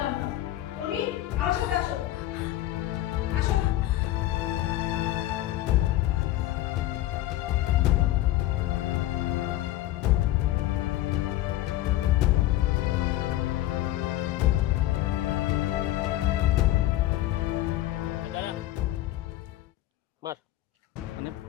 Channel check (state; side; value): quieter; right; 15.0 dB